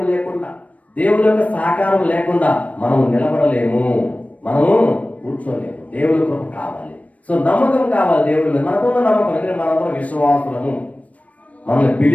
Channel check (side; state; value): right; late; 0.067 ms